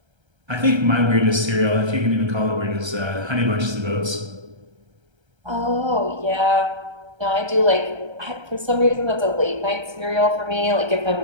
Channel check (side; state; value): left; late; 1.3 ms